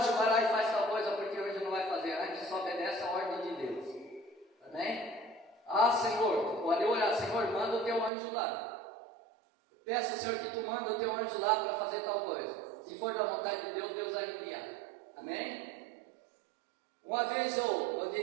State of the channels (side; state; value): left; drops out; at 8.1 s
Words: vai lá e faz tal coisa, porque o anjo não vai fazer. Antes só obedece a ordem de Deus. Amém? Senhor, pode orar: Senhor, manda o teu anjo lá. Peça, Senhor, que tu manda o teu anjo lá para fazer tal coisa. Se for da vontade de Deus, Deus vai enviar. Amém? Uma vez eu